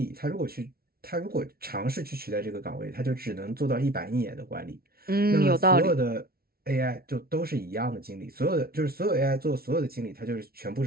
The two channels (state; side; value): late; left; 0.44 ms